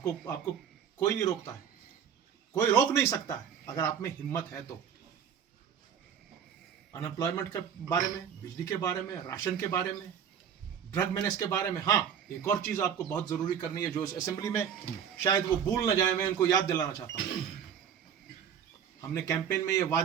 कोई नहीं रोकता है, कोई रोक नहीं सकता है अगर आप में हिम्मत है तो। अनएम्प्लॉयमेंट के बारे में, बिजली के बारे में, राशन के बारे में, ड्रग मेनेस के बारे में। हाँ, एक और चीज़ आपको बहुत ज़रूरी करनी है जो इस असेंबली में शायद वो भूल न जाए, मैं उनको याद दिलाना चाहता हूँ। हमने कैंपेन में ये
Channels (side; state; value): left; quieter; 8.0 dB